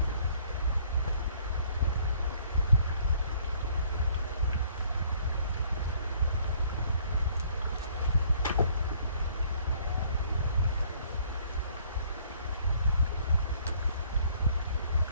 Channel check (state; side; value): inverted; both; correlation -0.60